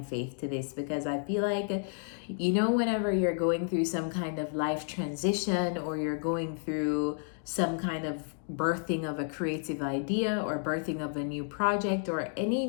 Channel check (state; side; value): silent; right; 57 dB below the other